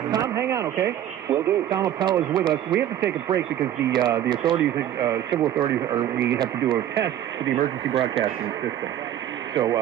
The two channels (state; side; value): quieter; left; 11.5 dB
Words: Tom, hang on, okay? Will do. Tom Appel is with us. We have to take a break because the authorities, civil authorities, we have to do a test for the emergency broadcasting system. So